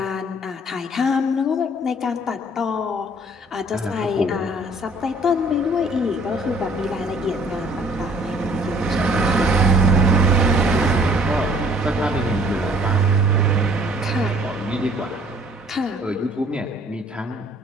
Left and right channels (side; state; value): both; normal; correlation 0.57